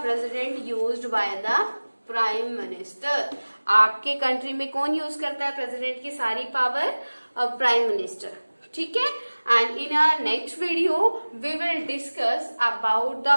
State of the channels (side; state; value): both; inverted; correlation -1.00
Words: president used by the prime minister. आपके कंट्री में कौन यूज करता है प्रेसिडेंट की सारी पावर? Prime minister. ठीक है? And in our next video we will discuss about the